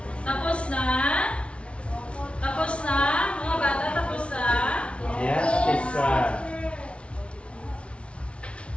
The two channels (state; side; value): late; right; 0.060 ms